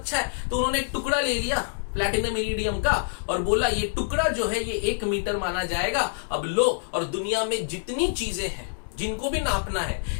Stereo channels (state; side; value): silent; right; digital silence